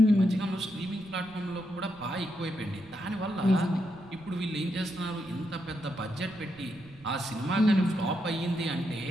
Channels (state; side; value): noise; right; rumble, 23 dB below the sound